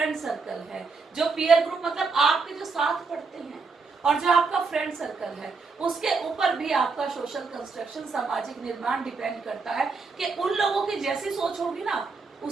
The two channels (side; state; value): left; quieter; 4.5 dB